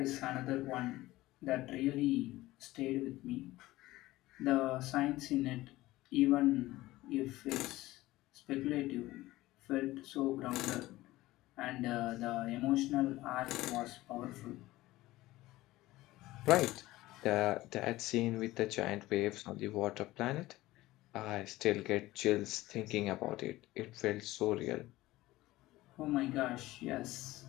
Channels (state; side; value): quieter; right; 17.6 dB